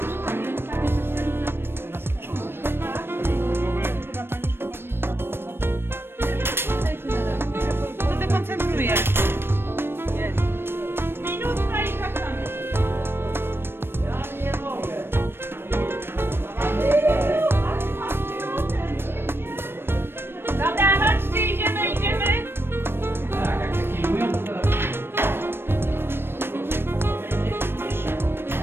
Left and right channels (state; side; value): late; left; 0.11 ms